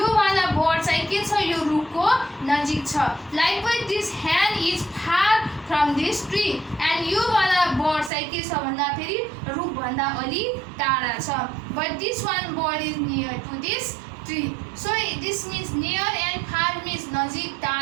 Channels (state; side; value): drops out; left; at 8.1 s